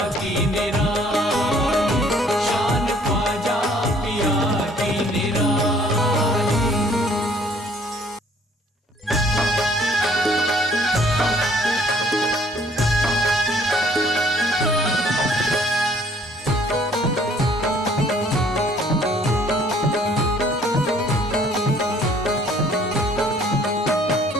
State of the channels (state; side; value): normal; both; correlation 0.59